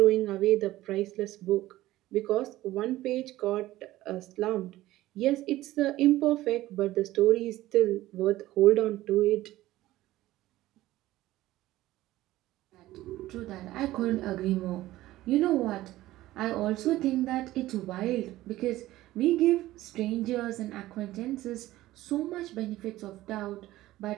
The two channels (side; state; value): left; quieter; 16.1 dB